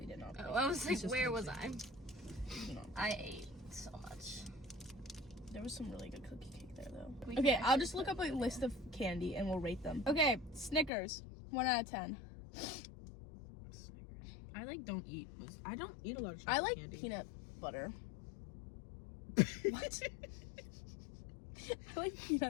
did not play Oh, I was like, It's just where like was I? saying. spoons. You know, I ate so much. there was some really good cookie cake there though. We Okay, can I'll just look up a list of candy and we'll rate them. Okay, Snickers. 1 out of 10. I like don't eat. I don't eat a lot of chocolate I like candy. peanut butter. What? I like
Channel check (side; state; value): right; drops out; at 10.9 s